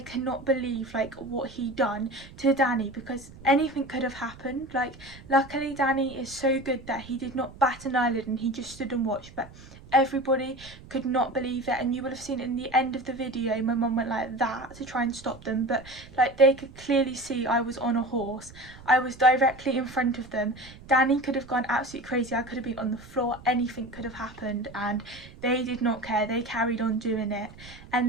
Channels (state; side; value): noise; right; rumble, 19 dB below the sound